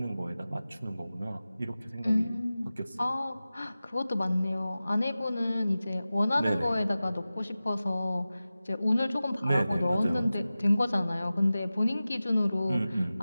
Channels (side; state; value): both; inverted; correlation -0.96